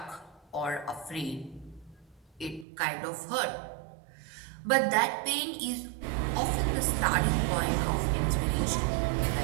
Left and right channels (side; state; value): left; drops out; at 2.7 s